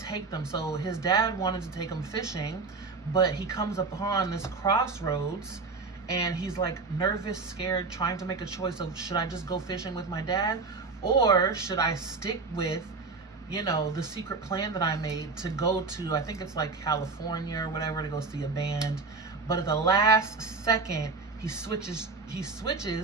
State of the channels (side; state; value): left; quieter; 4.2 dB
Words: them. So his dad wanted to take him fishing, but he comes upon this crossroads and he's like nervous, scared, trying to make a choice of, should I just go fishing with my dad, or should I stick with, you know, the secret plan that I made to go to, I think it's like California or whatever, to go see a band. But at the last second, he switches